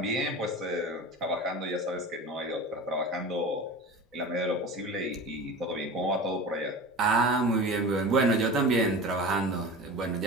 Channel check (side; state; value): both; normal; correlation 0.33